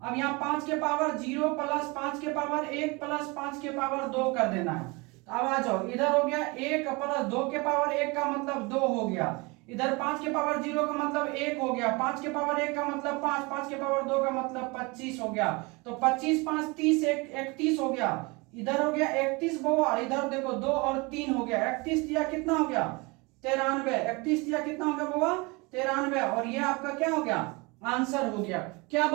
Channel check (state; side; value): quieter; left; 26.7 dB